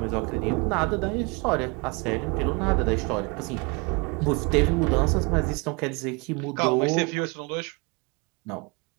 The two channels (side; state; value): left; quieter; 29.5 dB